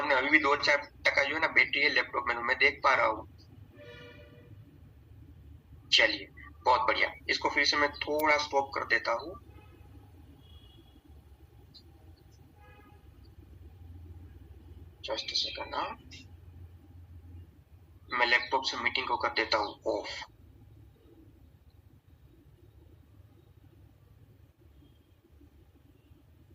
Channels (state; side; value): identical; both; correlation 1.00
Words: अभी भी 2-4% जो है ना बैटरी है लैपटॉप में, मैं देख पा रहा हूँ। चलिए बहुत बढ़िया, इसको फिर से मैं थोड़ा स्टॉप कर देता हूँ। जस्ट सेकंड ना, मैं लैपटॉप से मीटिंग को कर देता हूँ ऑफ।